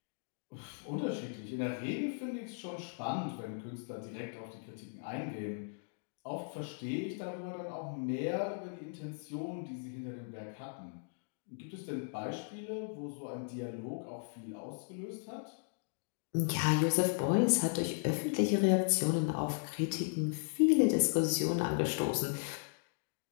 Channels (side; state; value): right; silent; digital silence